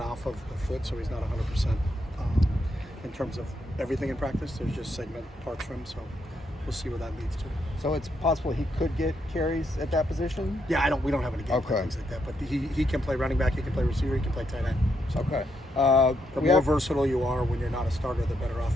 of the foot, so he's not 100% in terms of everything in practice. There's just segment parts for him, so we'll see what that leads to. So it's possible he could get carries at that position? Yeah, we don't have any game plan things like that, but he can play running back, he can play receiver, he can play tight end. So okay. The more versatile you are when you're not a starter, the better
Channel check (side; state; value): both; normal; correlation 0.79